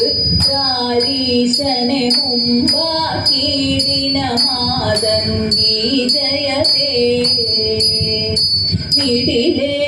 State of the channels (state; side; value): identical; both; correlation 1.00